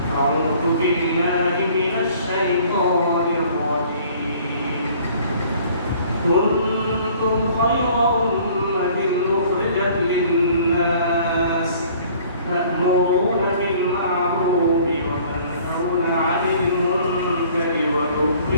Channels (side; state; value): both; inverted; correlation -0.54